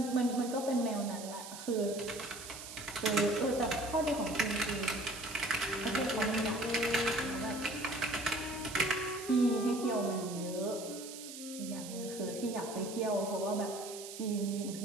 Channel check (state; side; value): noise; right; hiss, 11 dB below the sound